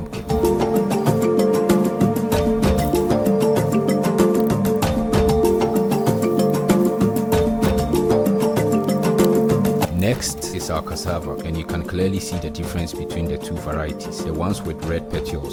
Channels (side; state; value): both; identical; correlation 1.00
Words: Next is our cassava, and you can clearly see the difference between the two varieties. The ones with red